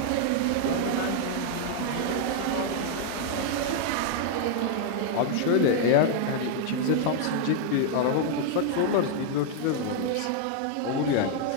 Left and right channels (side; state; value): both; different; correlation -0.01